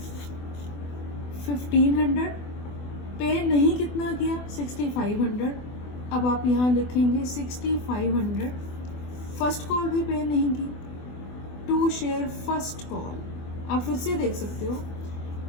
1500, पे नहीं कितना किया 6500, अब आप यहाँ लिखेंगे 6500, फर्स्ट कॉल भी पे नहीं की, टू शेयर फर्स्ट कॉल, आप फिर से देख सकते हो,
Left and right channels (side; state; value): right; late; 24 ms